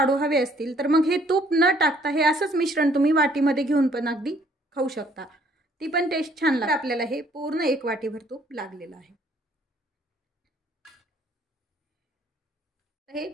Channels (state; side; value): normal; both; correlation 0.62